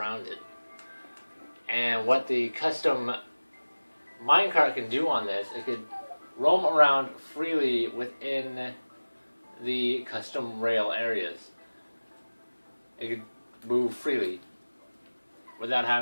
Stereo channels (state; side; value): inverted; both; correlation -1.00